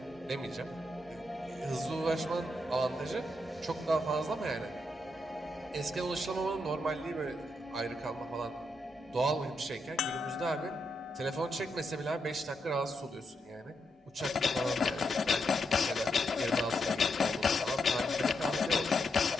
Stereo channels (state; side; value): normal; both; correlation 0.82